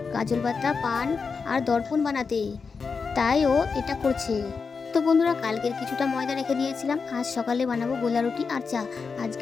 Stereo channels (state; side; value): quieter; right; 5.1 dB